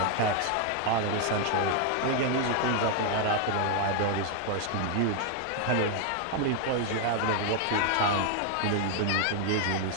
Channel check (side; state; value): both; different; correlation 0.00